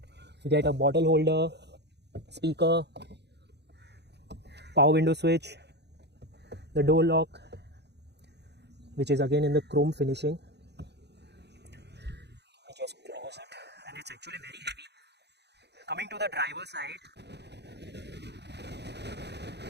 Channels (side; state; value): left; late; 0.49 ms